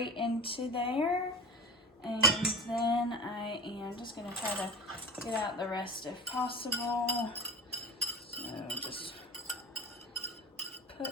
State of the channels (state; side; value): normal; both; correlation 0.31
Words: into there. And then I am just going to try to get out the rest if possible. So just